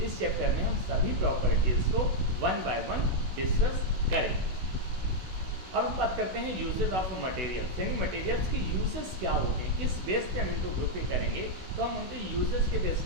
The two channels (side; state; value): left; late; 16 ms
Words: इस चैप्टर में हम सभी प्रॉपर्टीज़ को वन बाय वन डिस्कस करेंगे। अब हम बात करते हैं यूजेस ऑफ मटेरियल्स, यानी मटेरियल्स के यूजेस क्या होते हैं, किस बेस पे हम इनको ग्रुपिंग करेंगे, तो हम उनके यूजेस के बेस